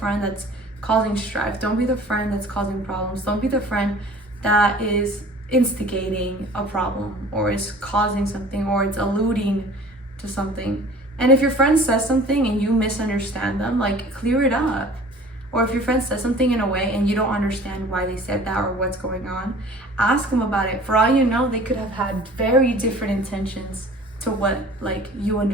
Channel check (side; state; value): both; normal; correlation 0.46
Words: that's causing strife. Don't be the friend that's causing problems. Don't be the friend that is instigating a problem or is causing something or it's alluding to something. And if your friend says something and you misunderstand them, like, clear it up. Or if your friend says something in a way and you don't understand why they said that or what's going on, ask them about it. For all you know, they could have had very different intentions to what like you